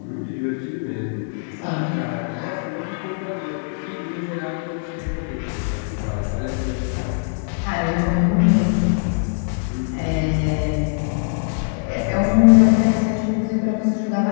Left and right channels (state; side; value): silent; right; digital silence